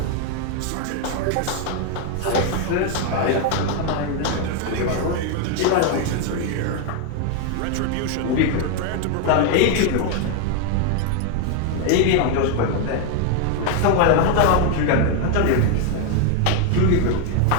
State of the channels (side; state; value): both; different; correlation 0.01